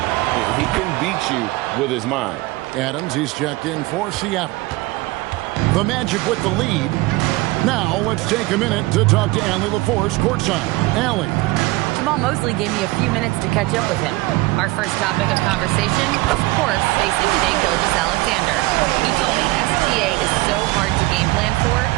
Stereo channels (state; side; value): quieter; left; 21.0 dB